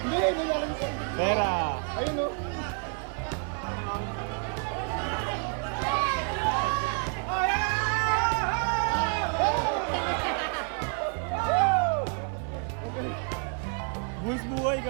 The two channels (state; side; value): quieter; left; 39.5 dB